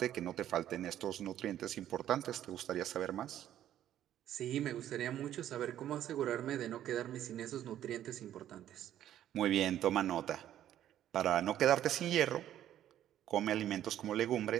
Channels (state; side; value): quieter; left; 11.6 dB